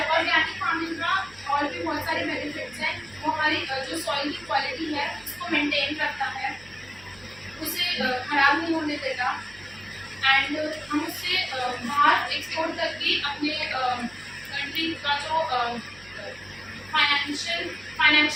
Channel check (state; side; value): noise; right; hum, 24 dB below the sound